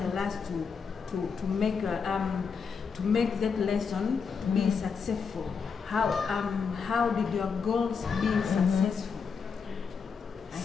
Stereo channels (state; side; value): quieter; right; 5.8 dB